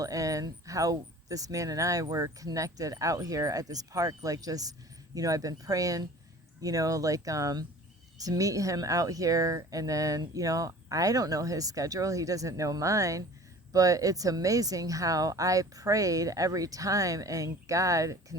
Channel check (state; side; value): normal; both; correlation 0.44